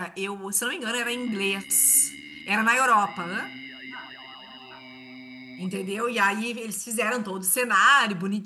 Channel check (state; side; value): identical; both; correlation 1.00